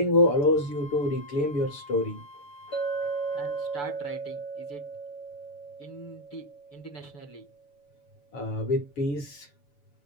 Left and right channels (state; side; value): late; right; 6.9 ms